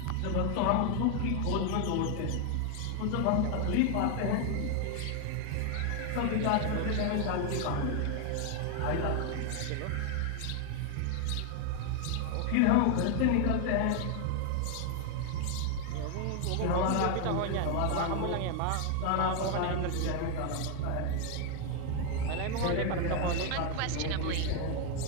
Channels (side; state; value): both; different; correlation 0.01